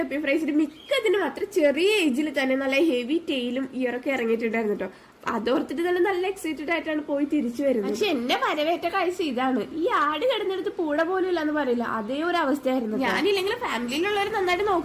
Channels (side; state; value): both; identical; correlation 1.00